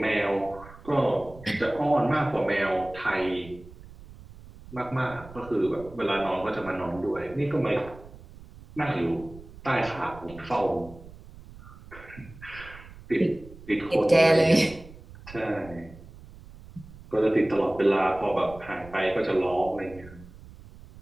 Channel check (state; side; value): noise; right; rumble, 19 dB below the sound